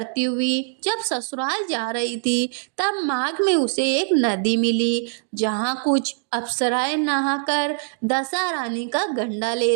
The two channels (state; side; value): silent; left; digital silence